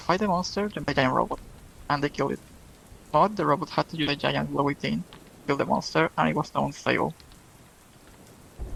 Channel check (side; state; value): both; identical; correlation 1.00